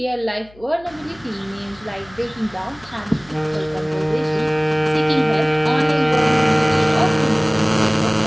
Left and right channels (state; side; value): noise; left; hum, 26 dB below the sound